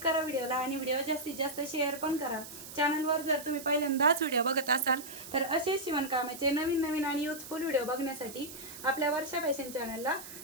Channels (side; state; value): right; noise; hiss, 13 dB below the sound